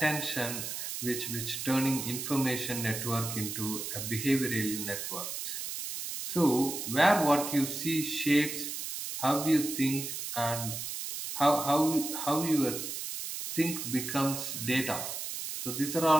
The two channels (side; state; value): right; noise; hiss, 5 dB below the sound